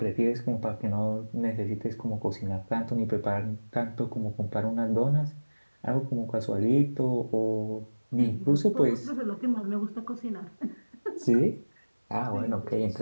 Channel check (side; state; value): both; inverted; correlation -1.00